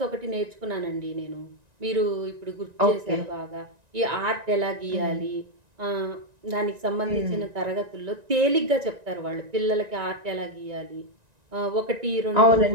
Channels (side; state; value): left; late; 1.9 ms